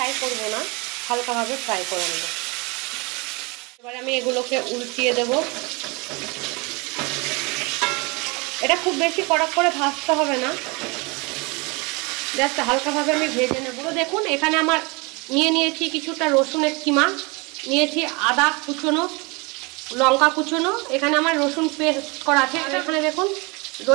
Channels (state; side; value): quieter; left; 28.0 dB